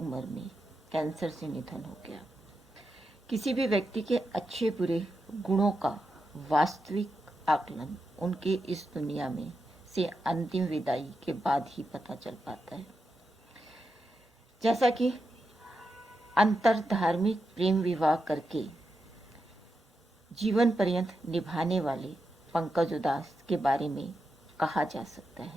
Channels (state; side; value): normal; both; correlation 0.87